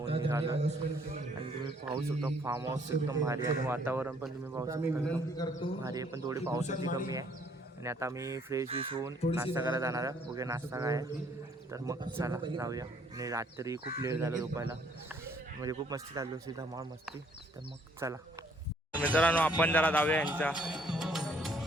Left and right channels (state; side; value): normal; both; correlation 0.63